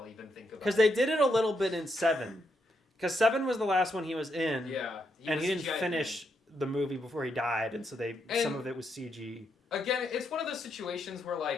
even think about it. Because they did it a little bit in 7. Because 7 was the last one he was in. Yeah. He didn't finish the movie before he died, and so some of it was CG. Again, it's one of those situations where,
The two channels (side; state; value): both; normal; correlation 0.80